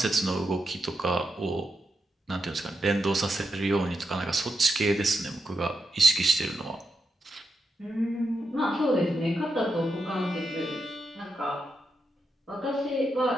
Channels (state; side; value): normal; both; correlation 0.85